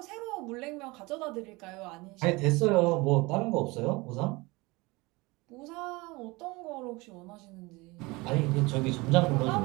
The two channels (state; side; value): quieter; left; 23.8 dB